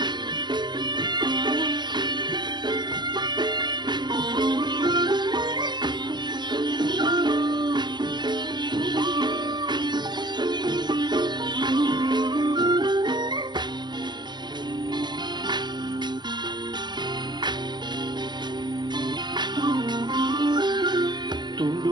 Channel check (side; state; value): left; late; 0.21 ms